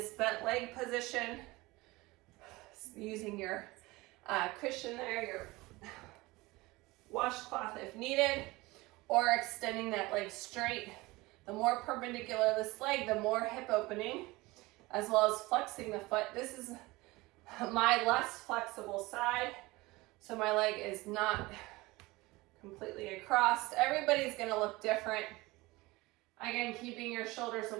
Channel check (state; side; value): quieter; left; 21.4 dB